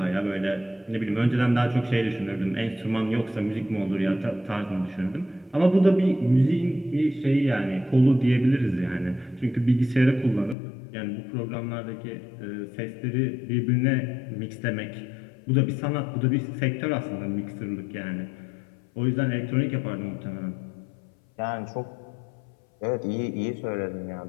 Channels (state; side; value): drops out; right; at 10.6 s